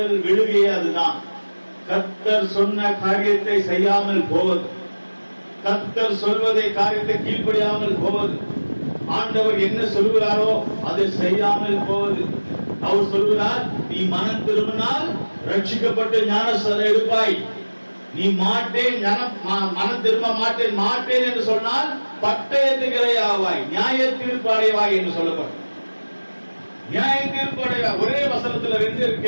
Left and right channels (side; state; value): both; inverted; correlation -1.00